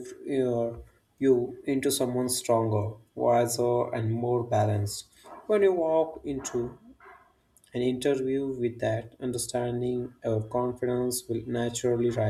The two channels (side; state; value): both; identical; correlation 1.00